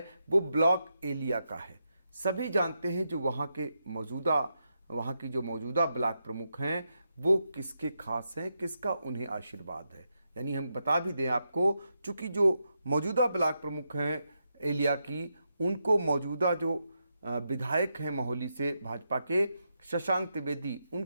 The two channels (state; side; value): inverted; both; correlation -0.85